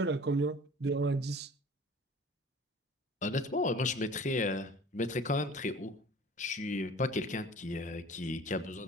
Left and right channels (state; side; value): normal; both; correlation 0.46